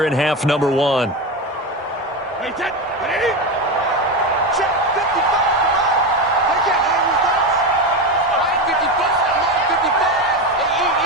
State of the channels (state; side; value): normal; both; correlation 0.17